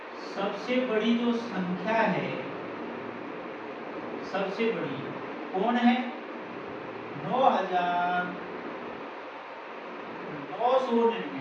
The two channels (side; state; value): both; identical; correlation 1.00